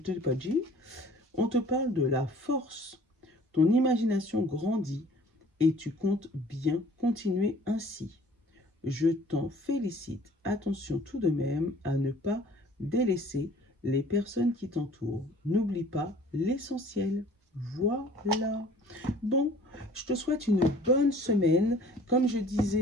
pas dit. On te parle de la force. Ton imagination grandit et tu comptes bien continuer ainsi. Je t'en félicite. Attention tout de même à ne pas délaisser les personnes qui t'entourent. N'oublie pas l'essentiel. Voilà. Bon, je te souhaite une bonne semaine. Comme je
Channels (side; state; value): both; normal; correlation 0.51